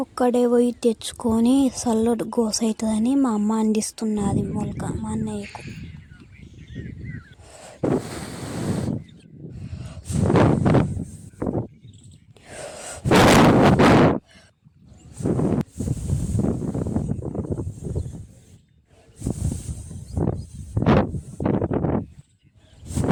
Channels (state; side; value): identical; both; correlation 1.00